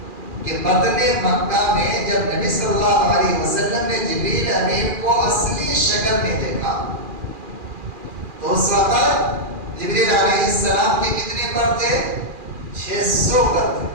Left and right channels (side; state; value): left; late; 2.4 ms